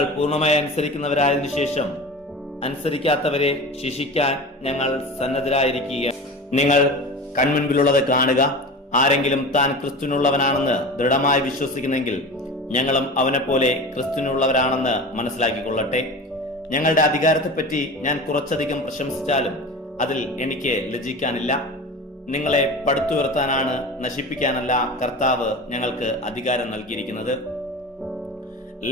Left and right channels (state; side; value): normal; both; correlation 0.32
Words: പൂർണ്ണമായി അനുസരിക്കുന്നവരായതിനു ശേഷം അനുസരിക്കാത്തവരെ ശിക്ഷിക്കാൻ ഞങ്ങൾ സന്നദ്ധരായിരിക്കുക. നിങ്ങൾ കൺമുൻപിലുള്ളത് കാണുക. ആരെങ്കിലും താൻ ക്രിസ്തുവിനുള്ളവനാണെന്ന് ദൃഢമായി വിശ്വസിക്കുന്നെങ്കിൽ ഞങ്ങളും അവനെപ്പോലെ ക്രിസ്തുവിനുള്ളവരാണെന്ന് മനസ്സിലാക്കിക്കൊള്ളട്ടെ. ഞങ്ങളുടെ അധികാരത്തെപ്പറ്റി ഞാൻ കുറച്ചധികം പ്രശംസിച്ചാലും അതിൽ എനിക്ക് ലജ്ജിക്കാനില്ല. നിങ്ങളെ പടുത്തുയർത്താനാണ്, നശിപ്പിക്കാനല്ല കർത്താവ് ഞങ്ങൾക്ക് അധികാരം നൽകിയിരിക്കുന്നത്.